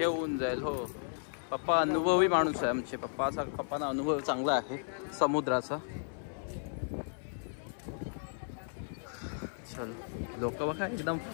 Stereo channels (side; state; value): right; silent; 55 dB below the other